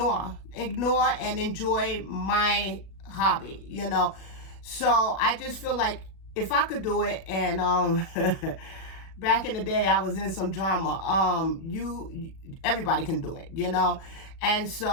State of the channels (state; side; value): late; right; 37 ms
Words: and enjoy my hobby, you know. So I just feel like if I could do it, and back in the day I was in some drama, everybody can do it, you know. And